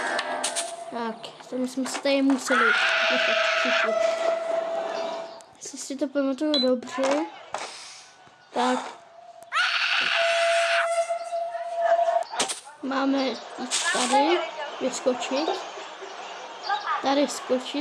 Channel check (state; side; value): identical; both; correlation 1.00